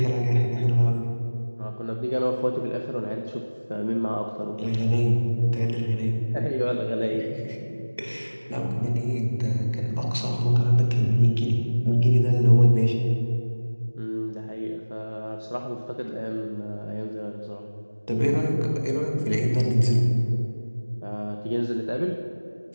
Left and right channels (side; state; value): both; inverted; correlation -1.00